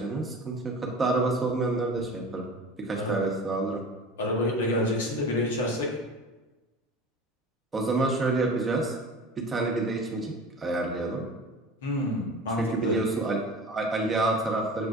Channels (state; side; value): normal; both; correlation 0.36